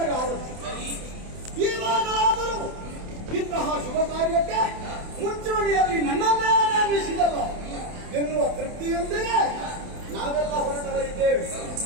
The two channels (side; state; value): left; late; 28 ms